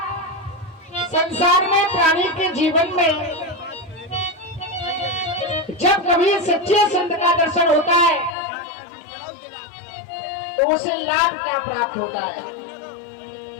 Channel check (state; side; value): drops out; right; at 8.3 s